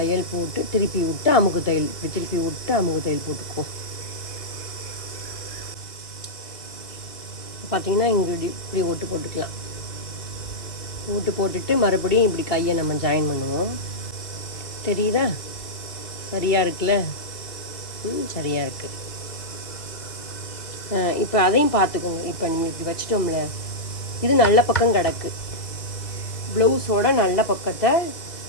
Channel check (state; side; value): late; right; 1.9 ms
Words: தையல் போட்டு திருப்பி விட்டு அமுக்கு தையல், இப்படி திருப்பி விட்டு அமுக்கு தையல் போட்டுக்குவோம். பார்த்தீங்கன்னா இங்கே இப்படி ஒட்டு போட்டுக்கலாம். ஓட்டு போட்டுட்டு மறுபடியும் இப்படி கையை நம்ம ஜாயின் பண்ணுவோம். தெரியுதா? சரியாக இருக்குல்ல? சரியாக இருக்குது. இப்போ அதையும் பார்த்துக்கோங்க. இப்போ நம்ம இப்படி வச்சிட்டோம்ல, இது நல்ல பக்கம் கிடக்கு. ப்ளவுஸோட நல்ல பக்கத்தை